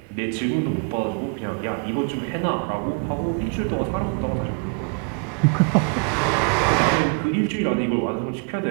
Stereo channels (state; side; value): quieter; left; 37.2 dB